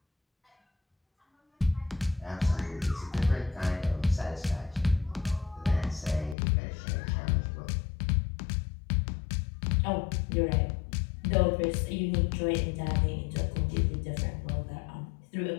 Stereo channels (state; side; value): drops out; right; at 6.4 s